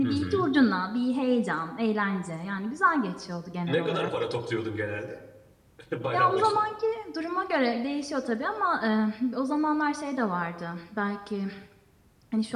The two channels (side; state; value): both; identical; correlation 1.00